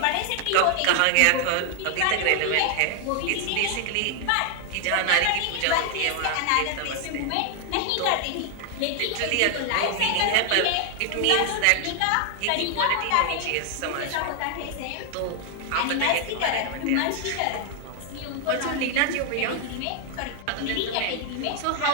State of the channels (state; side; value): different; both; correlation 0.00